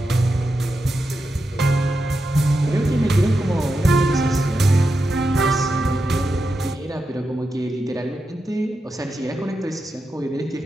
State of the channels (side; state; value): both; normal; correlation 0.88